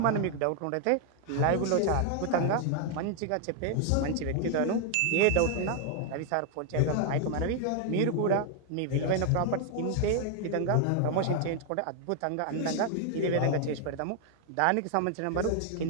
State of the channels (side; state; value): both; different; correlation 0.00